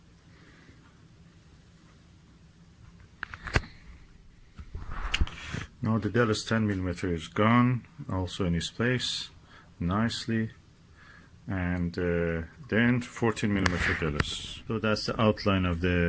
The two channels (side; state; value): both; identical; correlation 1.00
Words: Now the Delos 10 millimeter is gone, also in its place nicely. And then 14 millimeter Delos. So that's the outline of